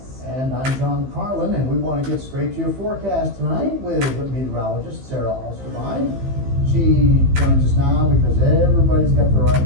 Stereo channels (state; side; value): late; left; 15 ms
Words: And I'm John Carlin, and we want to get straight to your forecast tonight with meteorologist Sarah Alsterbein. She joins us now because everybody's got their eye on